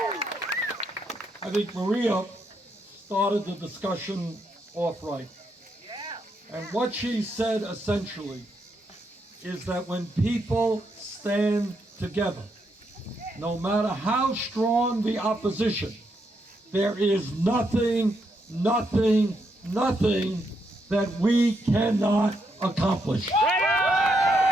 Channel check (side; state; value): both; normal; correlation 0.79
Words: I think Maria started the discussion off right. And what she said essentially is that when people stand together, no matter how strong the opposition, there is nothing nothing that we cannot accomplish. Right